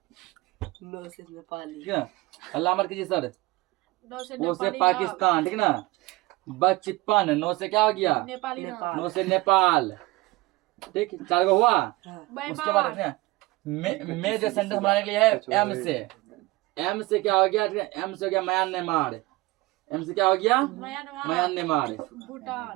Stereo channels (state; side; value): quieter; left; 20.8 dB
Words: नो से नेपाली, ठीक है। अल्लाह मत कीजिए सर। पो से पाकिस्तान, ठीक ना। बचपन, नो से क्या हो गया? नो से नेपाल, ठीक। 4 गो हुआ। उसके बाद देखिए, में जो सेंटेंस बनाने के लिए है एम से। एम से क्या हो गया? एम से हो गया म्यांमार। एम से क्या हो गया? म्यांमार,